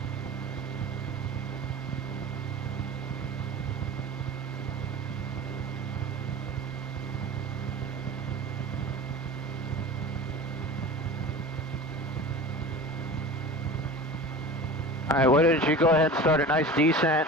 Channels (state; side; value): normal; both; correlation 0.35